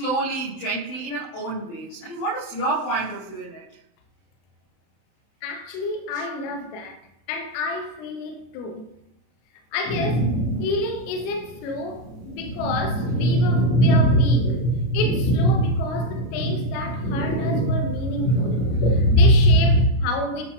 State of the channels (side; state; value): right; late; 33 ms